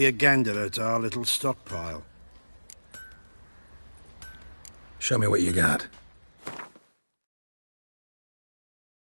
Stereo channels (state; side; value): inverted; both; correlation -1.00